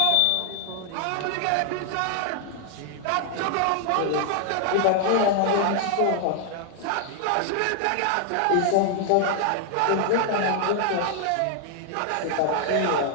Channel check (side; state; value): both; different; correlation 0.00